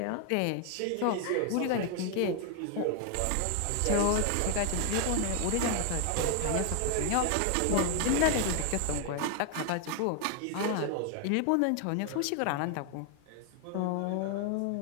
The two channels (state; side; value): different; both; correlation 0.00